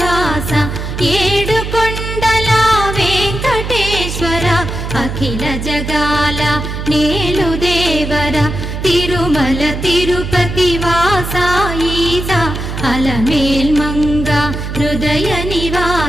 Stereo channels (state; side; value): noise; right; hum, 5 dB below the sound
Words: ఏడు కొండల వెంకటేశ్వర అఖిల జగాల నేలు దేవర తిరుమల తిరుపతి వాస ఈస అలమేల్ మంగ హృదయ